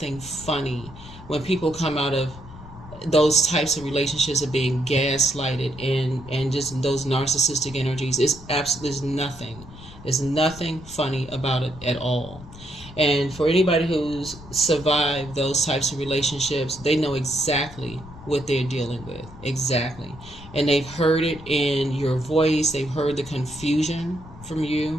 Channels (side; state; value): left; noise; rumble, 17 dB below the sound